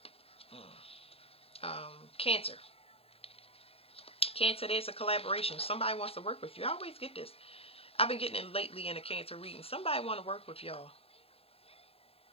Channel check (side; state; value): right; late; 0.28 ms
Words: Cancer. Cancer, there's a collaboration. Somebody wants to work with you. I always get this. I've been getting it lately in a Cancer reading. Somebody want to work with y'all.